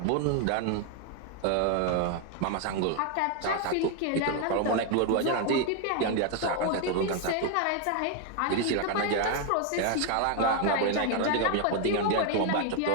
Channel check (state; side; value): different; both; correlation 0.01